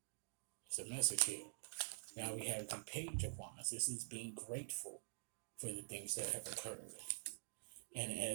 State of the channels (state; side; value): silent; left; digital silence